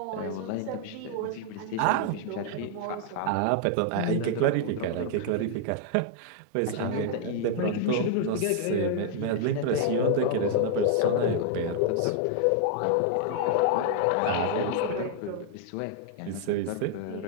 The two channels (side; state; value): both; different; correlation 0.00